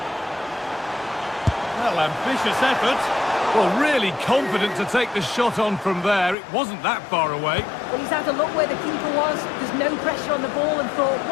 Well, ambitious effort. Well, really confident to take the shot on from there. It wasn't that far away. Well, he's had a look where the keeper was. There's no pressure on the ball and thought,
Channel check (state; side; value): drops out; right; at 6.4 s